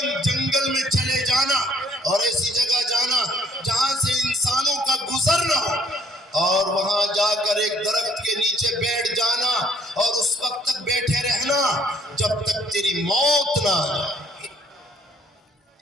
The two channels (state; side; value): normal; both; correlation 0.63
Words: جنگل میں چلے جانا اور ایسی جگہ جانا جہاں سے انسانوں کا گزر نہ ہو، اور وہاں جا کر ایک درخت کے نیچے بیٹھ جانا اور اس وقت تک بیٹھے رہنا جب تک تیری موت نہ آ جائے۔